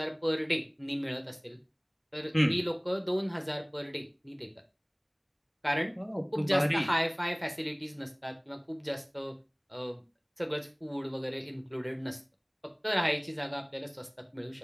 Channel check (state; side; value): identical; both; correlation 1.00